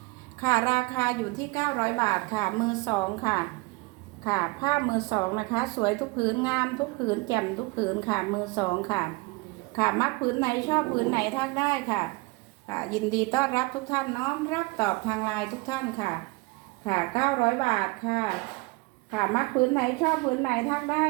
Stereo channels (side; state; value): left; quieter; 25.7 dB